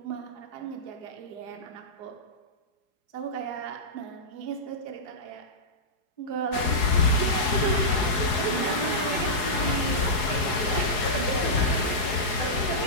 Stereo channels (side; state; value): right; late; 4.7 ms